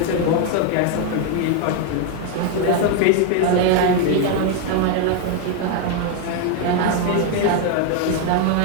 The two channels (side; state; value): both; different; correlation 0.01